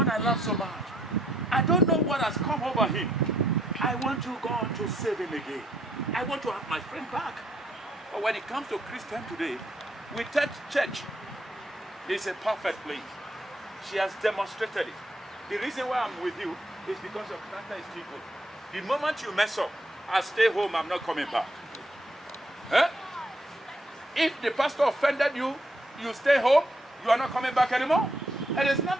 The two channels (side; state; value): both; normal; correlation 0.73